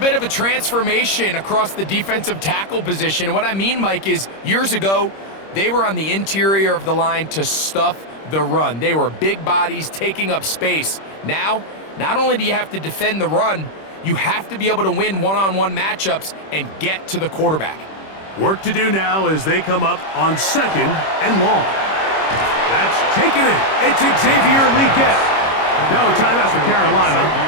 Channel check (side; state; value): right; late; 26 ms